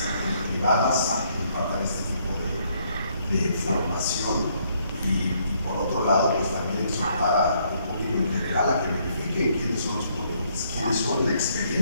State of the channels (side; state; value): both; inverted; correlation -0.70